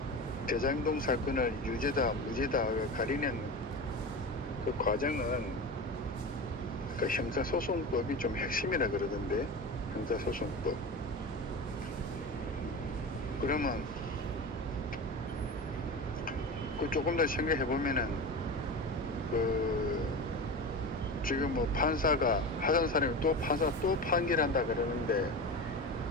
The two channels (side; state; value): both; normal; correlation 0.27